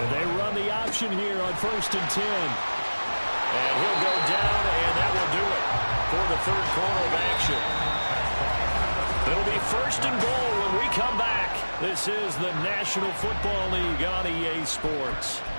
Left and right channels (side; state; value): both; inverted; correlation -1.00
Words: they run the option here on 1st and 10. And he'll go down, and that will do it for the 3rd quarter of action. It'll be 1st and goal when we come back. This is the National Football League on EA Sports.